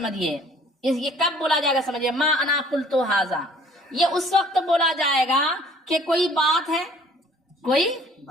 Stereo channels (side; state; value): both; normal; correlation 0.55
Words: یہ کب بولا جائے گا؟ سمجھیے، ما انا قلت ھذا یہ اس وقت بولا جائے گا کہ کوئی بات